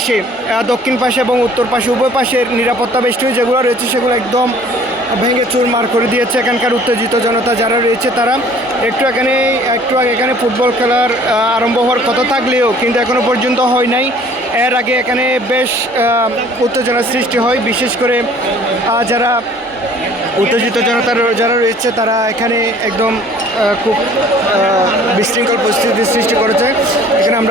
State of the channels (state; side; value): normal; both; correlation 0.53